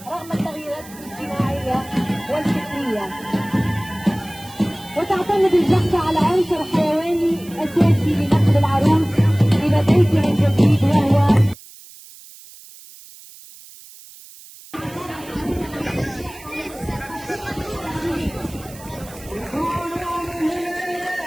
رغم التغييرات الاجتماعية والفكرية. وتعتمد الجحفة على عنصر حيواني أساسي لنقل العروس إلى بيتها الجديد وهو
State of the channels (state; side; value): noise; right; hiss, 20 dB below the sound